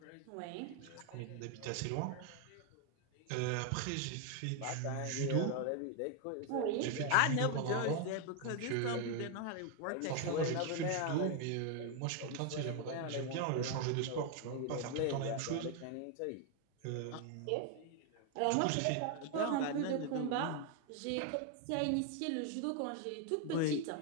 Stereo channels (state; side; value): different; both; correlation 0.01